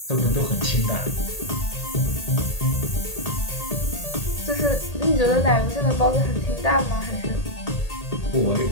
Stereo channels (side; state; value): right; late; 1.8 ms